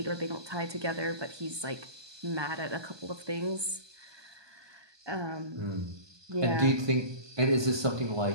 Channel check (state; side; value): late; left; 1.2 ms